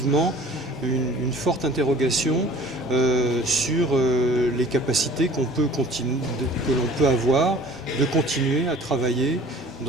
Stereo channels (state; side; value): normal; both; correlation 0.48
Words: une forte interrogation sur les capacités que l'on peut avoir de continuer à travailler